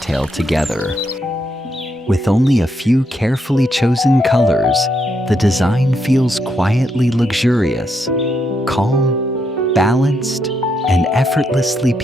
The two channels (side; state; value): both; normal; correlation 0.78